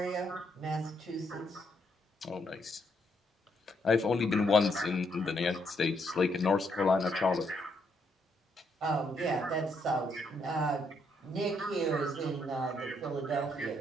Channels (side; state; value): both; normal; correlation 0.74